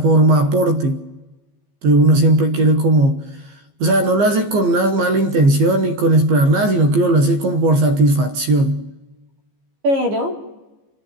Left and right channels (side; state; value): left; late; 15 ms